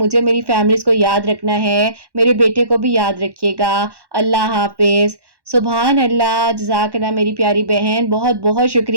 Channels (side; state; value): left; late; 1.1 ms